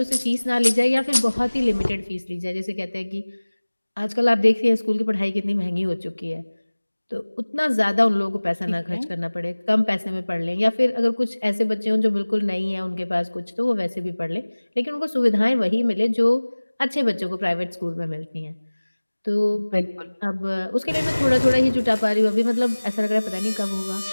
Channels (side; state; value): both; inverted; correlation -1.00